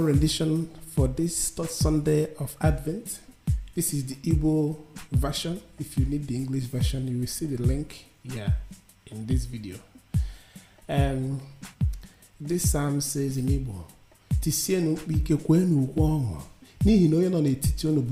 rendition for this third Sunday of Advent. This is the Igbo version. If you need the English version, you will see the link here in this video. This psalm says in Igbo, Tisienu ike kwenu ukwu n'ihi na onye nọ n'etiti unu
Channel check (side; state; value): both; identical; correlation 1.00